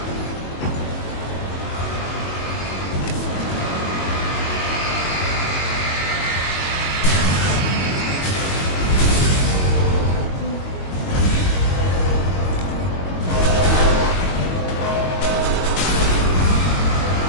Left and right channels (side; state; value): right; late; 22 ms